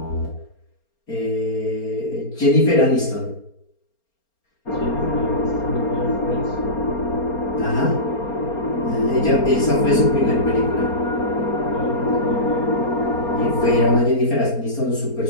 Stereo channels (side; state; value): right; late; 4.3 ms